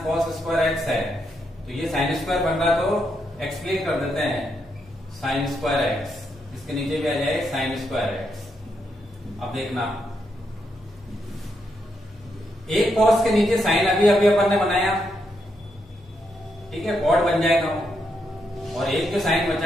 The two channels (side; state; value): both; normal; correlation 0.80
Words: cos square x है, तो ये साइन स्क्वायर बन रहा तो एक्सप्लेन कर देते हैं साइन स्क्वायर x, इसके नीचे भी आ जाए साइन स्क्वायर x। अब देखना, एक cos के नीचे साइन अभी अपन ने बनाया, ठीक है, cot बन जाएगा, और एक जो साइन